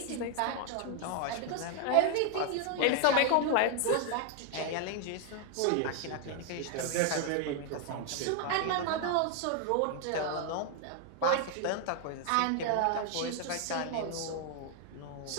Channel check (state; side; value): different; both; correlation 0.00